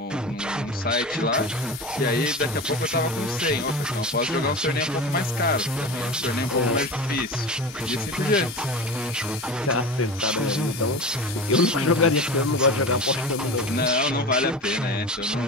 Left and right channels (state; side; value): normal; both; correlation 0.30